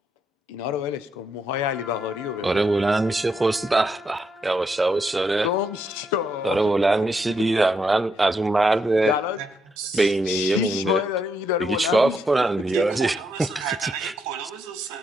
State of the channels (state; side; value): normal; both; correlation 0.79